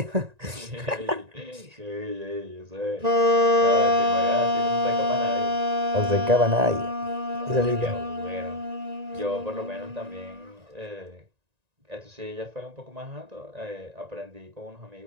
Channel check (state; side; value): late; left; 1.9 ms